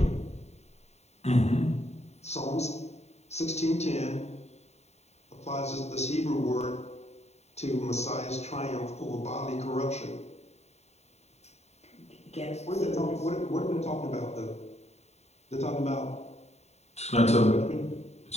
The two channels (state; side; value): late; right; 0.32 ms